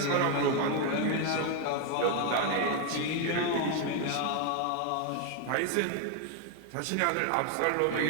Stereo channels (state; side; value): different; both; correlation 0.01